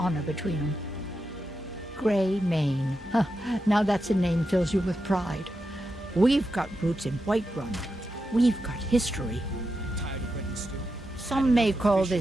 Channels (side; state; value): both; normal; correlation 0.88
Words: between them. Greymane. Now that's a name fills you with pride. We've got roots in Whiterun. We've got history. Some may call